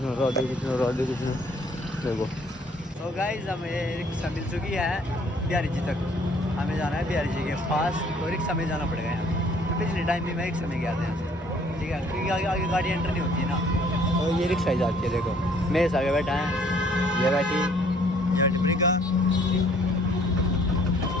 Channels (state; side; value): normal; both; correlation 0.60